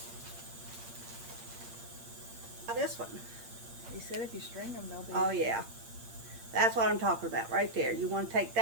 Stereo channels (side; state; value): left; late; 8.7 ms